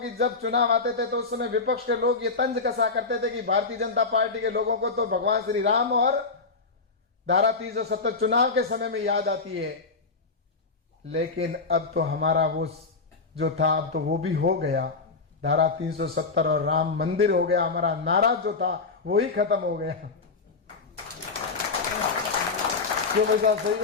जब चुनाव आते थे तो उस समय विपक्ष के लोग ये तंज कसा करते थे कि भारतीय जनता पार्टी के लोगों को तो भगवान श्री राम और धारा 370 चुनाव के समय में याद आती है। लेकिन अब तो हमारा वो जो था, अब तो वो भी हो गया। धारा 370 और राम मंदिर हो गया। हमारा नारा जो था वो ही खत्म हो गया। क्यों भाई साहब,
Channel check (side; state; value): right; quieter; 4.2 dB